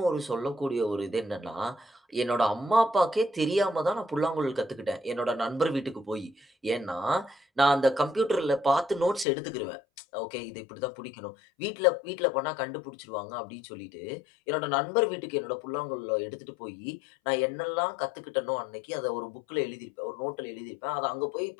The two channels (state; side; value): drops out; right; at 9.2 s